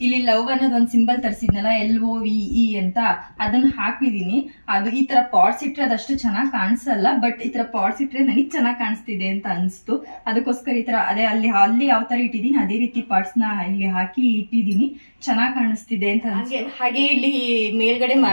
ಇಲ್ಲಿ ಲವ್ ಅನ್ನೋದು ಒಂದು ಸಿಂಬಲ್ ತರಿಸಿದ್ನಲ್ಲ LOVE ಅಂತ, ಅದನ್ನ ಹಾಕಿದೀನಿ. ಅದು ಈ ತರ ಪಾಟ್ಸ್ ಇಟ್ರೆ ಅದಷ್ಟು ಚೆನ್ನಾಗಿ ಕಾಣಿಸಲ್ಲ, ಬಟ್ ಈ ತರ ಪಾಟ್ಸ್ ಇಟ್ರೆ ನನಗೆ ಚೆನ್ನಾಗಿ ಕಾಣಿಸ್ತಿದೆ ಅಂತ ಅನ್ಸ್ತು. ಅದಕ್ಕೋಸ್ಕರ ಈ ತರ ಅದೇ ಅಲ್ಲಿ ಯಾವ ತರ ಇಟ್ಟಿದ್ದೀನಿ ಅದೇ ರೀತಿ ಪಾಟ್ಸ್ ನ ಇಲ್ಲಿ ಹಾಕಿ ಇಟ್ಟಿದ್ದೀನಿ, ಚೆನ್ನಾಗಿ ಕಾಣಿಸ್ತಿದೆ ಅಂತ. ಹಾಗೆ ಇಲ್ಲಿ ಮೇಲ್ಗಡೆ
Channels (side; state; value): both; inverted; correlation -1.00